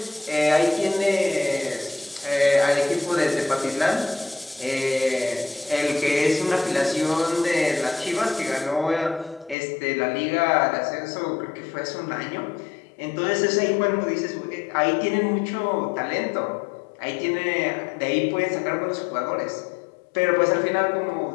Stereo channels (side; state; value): right; drops out; at 9.6 s